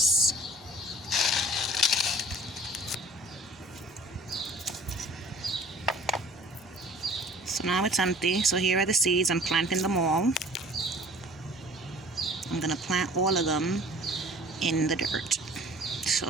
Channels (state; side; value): normal; both; correlation 0.49